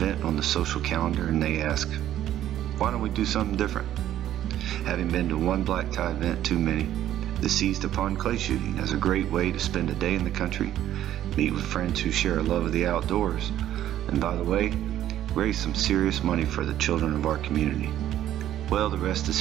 on the social calendar, and they asked, why don't we do something different? Having been to one black tie event too many, they seized upon clay shooting as a great way to spend a day in the country, meet with friends who share a love of the outdoors, and by the way, raise some serious money for the children of our community. Well, the rest is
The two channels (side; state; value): left; quieter; 12.1 dB